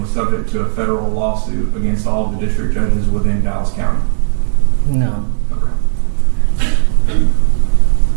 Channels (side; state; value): left; silent; digital silence